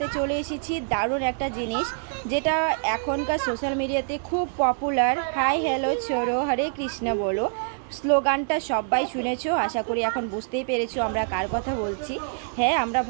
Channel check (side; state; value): left; silent; 61 dB below the other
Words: চলে এসেছি দারুণ একটা জিনিস, যেটা এখনকার সোশ্যাল মিডিয়াতে খুব পপুলার। হাই হ্যালো ছোড়ো হরে কৃষ্ণ বলো স্লোগানটা সবাই শুনেছো, আশা করি এখন বুঝতেই পেরেছো আমরা কার কথা বলছি। হ্যাঁ, আমরা